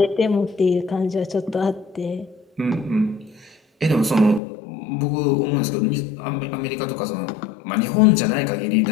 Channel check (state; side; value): drops out; right; at 4.4 s